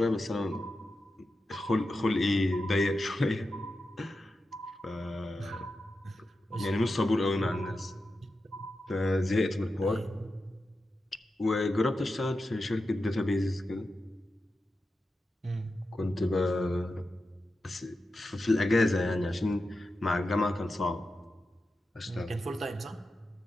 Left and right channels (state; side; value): normal; both; correlation 0.90